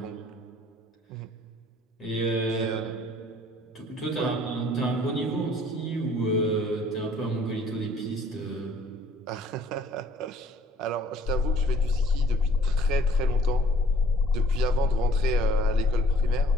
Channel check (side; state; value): both; normal; correlation 0.57